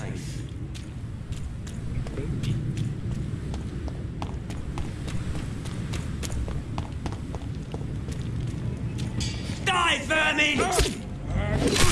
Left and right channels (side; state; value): both; identical; correlation 1.00